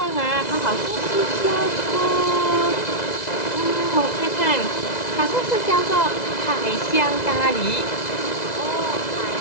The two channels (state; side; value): late; right; 2.0 ms